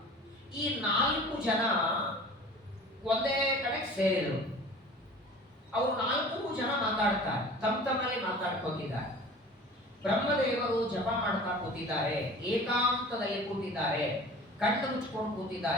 ಈ 4 ಜನ ಒಂದೇ ಕಡೆ ಸೇರಿದರು. ಅವರು 4 ಜನ ಮಾತಾಡ್ತಾರೆ, ತಮ್ಮಲ್ಲಿ ಮಾತಾಡ್ಕೋತಿದ್ದಾರೆ. ಬ್ರಹ್ಮದೇವರು ಜಪ ಮಾಡ್ತಾ ಕೂತಿದ್ದಾರೆ, ಏಕಾಂತದಲ್ಲಿ ಕೂತಿದ್ದಾರೆ, ಕಣ್ಣು ಮುಚ್ಕೊಂಡು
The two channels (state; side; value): normal; both; correlation 0.42